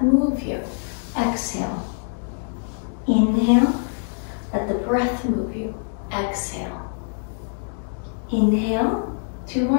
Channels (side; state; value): right; silent; 63 dB below the other